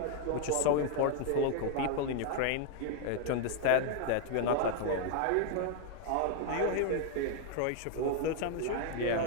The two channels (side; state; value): both; different; correlation 0.00